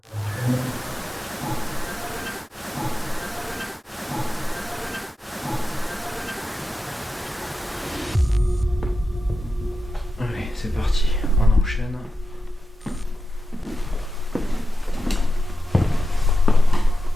Allez, c'est parti, on enchaîne.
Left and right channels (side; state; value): both; normal; correlation 0.91